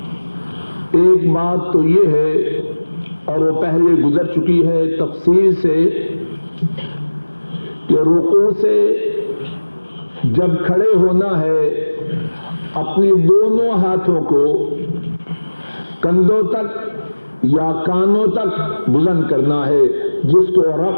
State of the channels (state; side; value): inverted; both; correlation -1.00